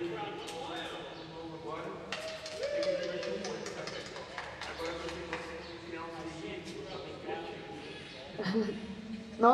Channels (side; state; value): both; identical; correlation 1.00